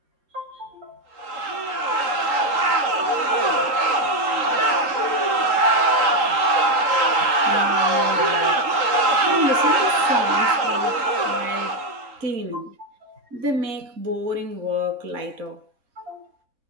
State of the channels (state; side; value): late; left; 3.8 ms